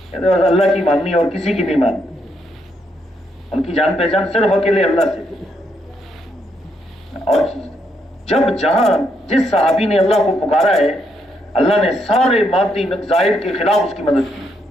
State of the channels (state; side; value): normal; both; correlation 0.77